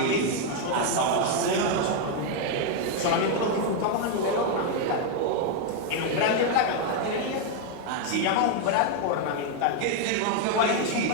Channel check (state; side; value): different; both; correlation 0.01